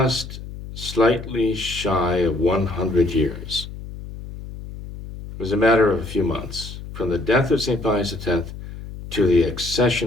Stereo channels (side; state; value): left; noise; hum, 12 dB below the sound